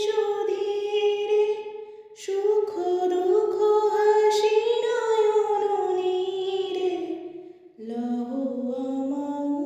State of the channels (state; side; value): identical; both; correlation 1.00